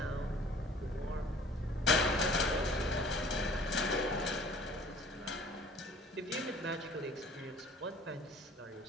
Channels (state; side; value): normal; both; correlation 0.51